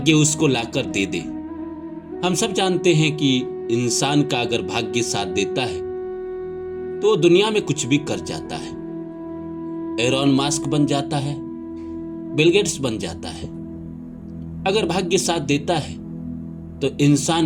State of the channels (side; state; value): both; identical; correlation 1.00